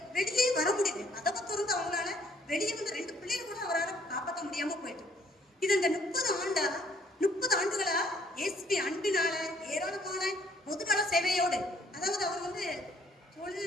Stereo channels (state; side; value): normal; both; correlation 0.63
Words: வெளியே வர முடியுது. கதவை திறந்து அவங்களால வெளியே வந்து 2 பிள்ளைகள் கூட அவரால் காப்பாற்ற முடியாம போயிட்டு. இது இந்த 30 ஆண்டுகளா இயேசுவின் அன்பினால ஏராளமான பொதுநல சேவையோடு, அதாவது அவர் வந்து